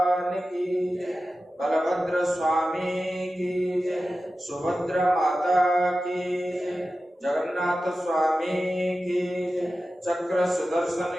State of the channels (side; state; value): both; normal; correlation 0.94